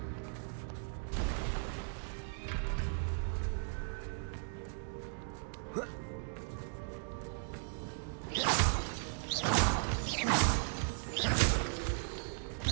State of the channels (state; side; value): silent; left; digital silence